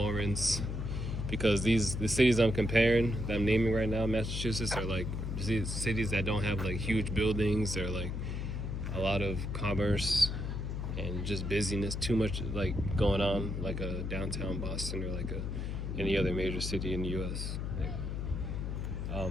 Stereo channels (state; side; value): noise; left; hum, 3 dB below the sound